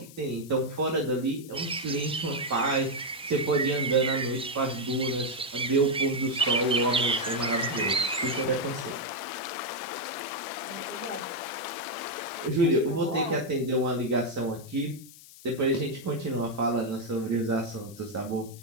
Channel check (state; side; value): noise; left; hiss, 19 dB below the sound